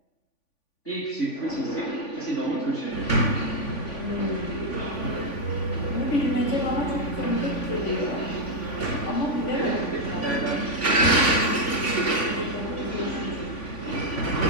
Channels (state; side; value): late; right; 3.5 ms